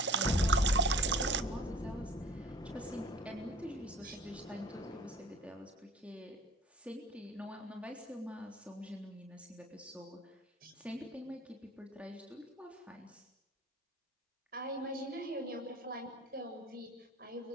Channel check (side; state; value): both; normal; correlation 0.46